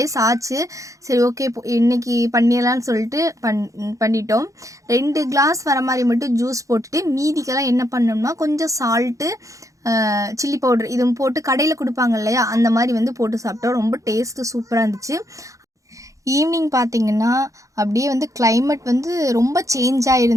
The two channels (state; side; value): late; left; 0.16 ms